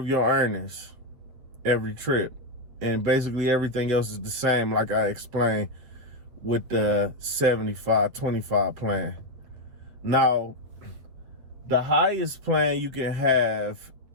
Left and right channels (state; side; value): late; left; 8.5 ms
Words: your earnings every trip. And basically everything else is the same, like I explained with the 75/25 plan. Now, the highest plan you can have